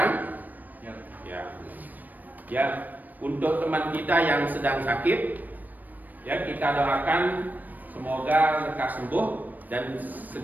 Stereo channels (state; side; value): late; left; 0.085 ms